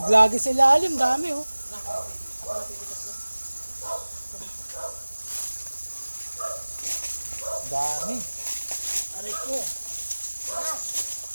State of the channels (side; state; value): both; inverted; correlation -1.00